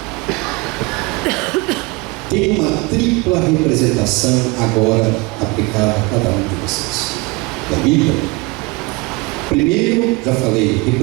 tem uma tripla representação agora aplicada a cada um de vocês. Da Bíblia. Primeiro, já falei,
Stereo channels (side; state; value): left; quieter; 25.8 dB